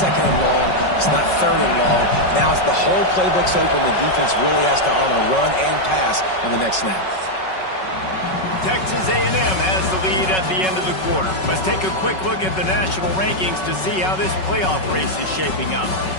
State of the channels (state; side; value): late; right; 5.4 ms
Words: and long. It's not 3rd and long. Now it's the whole playbook's open. The defense really has to honor run and pass on the next snap. Texas A&M has the lead at the end of the quarter. Let's take a quick look at the national rankings to see how this playoff race is shaping up.